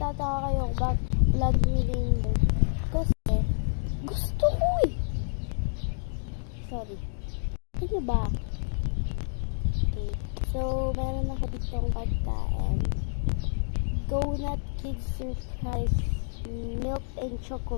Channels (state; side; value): silent; right; digital silence